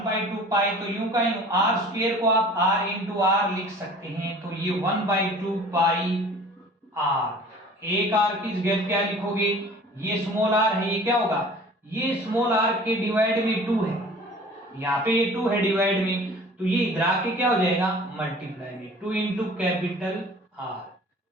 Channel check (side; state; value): both; normal; correlation 0.46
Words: पाई तो यूं का यूं, आर स्क्वायर को आप r इंटू आर लिख सकते हैं। तो ये 1/2 पाई आर, एक आर की जगह क्या लिखोगे? ये स्मॉल आर है, ये क्या होगा? ये स्मॉल आर के डिवाइड में 2 है, यहाँ पे ये 2 है डिवाइड में, तो ये इधर आके क्या हो जाएगा? मल्टीप्लाई में 2 इंटू कैपिटल आर।